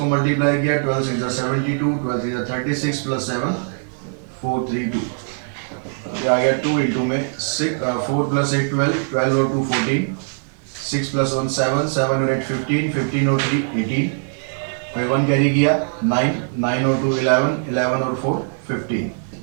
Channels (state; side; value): silent; left; digital silence